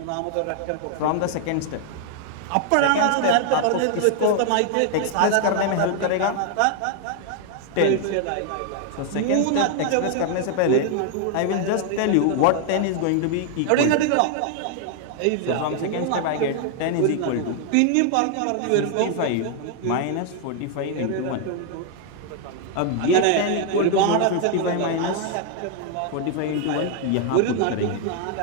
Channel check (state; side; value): different; both; correlation 0.00